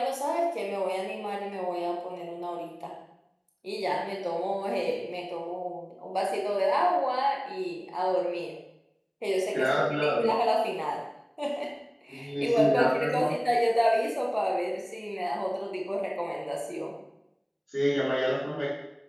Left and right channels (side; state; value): both; identical; correlation 1.00